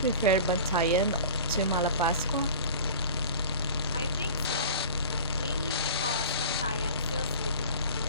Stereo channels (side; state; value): both; inverted; correlation -0.39